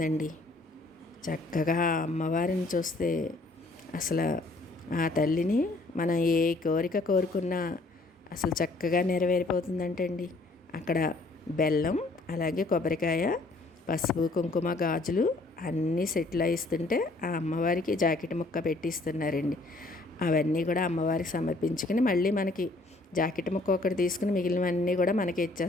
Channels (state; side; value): quieter; right; 3.1 dB